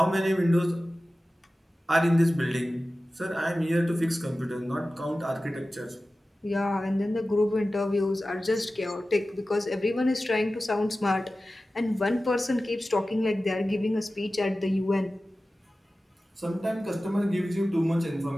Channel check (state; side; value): normal; both; correlation 0.95